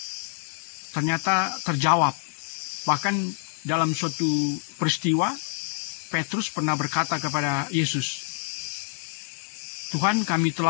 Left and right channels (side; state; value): right; silent; 60 dB below the other